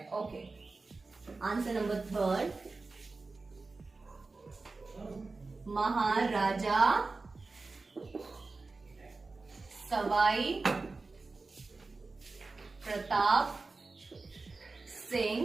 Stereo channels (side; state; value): left; quieter; 3.7 dB